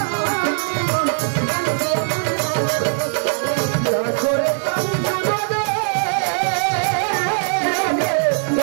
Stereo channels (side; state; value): left; silent; 63 dB below the other